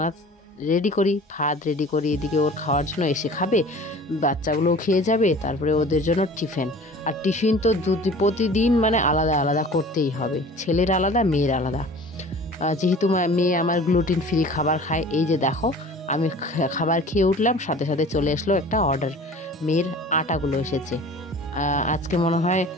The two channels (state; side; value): normal; both; correlation 0.43